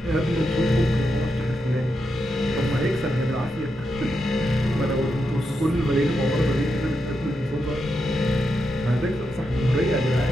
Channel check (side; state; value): both; normal; correlation 0.85